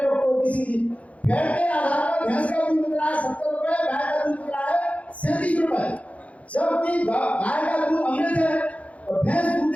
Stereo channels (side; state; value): right; late; 0.066 ms